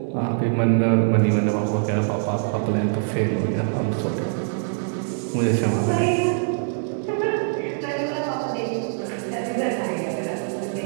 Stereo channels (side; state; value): left; silent; digital silence